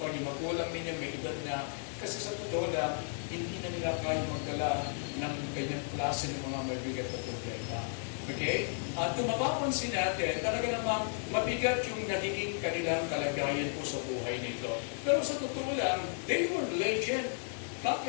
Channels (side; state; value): right; silent; 55 dB below the other